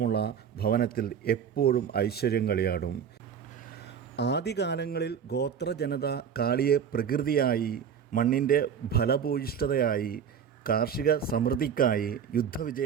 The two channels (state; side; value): quieter; left; 7.6 dB